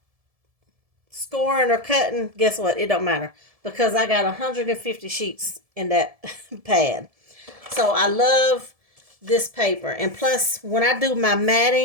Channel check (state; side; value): late; left; 1.7 ms